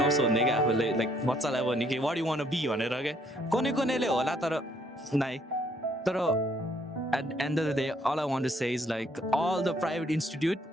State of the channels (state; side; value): normal; both; correlation 0.67